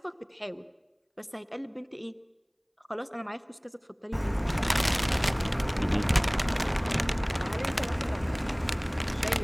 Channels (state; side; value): identical; both; correlation 1.00